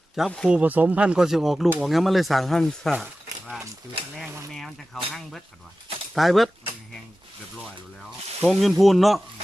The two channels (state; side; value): normal; both; correlation 0.95